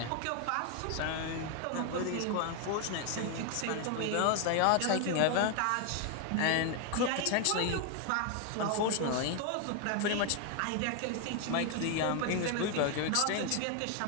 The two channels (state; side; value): different; both; correlation 0.00